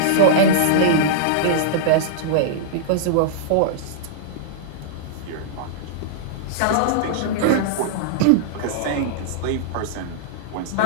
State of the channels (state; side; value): different; both; correlation -0.02